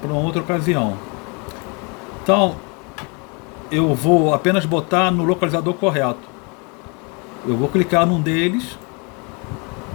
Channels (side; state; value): right; quieter; 32.5 dB